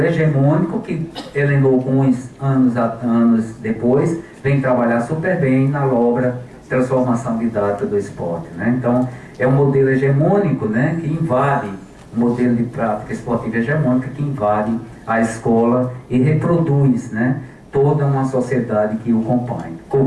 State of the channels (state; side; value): identical; both; correlation 1.00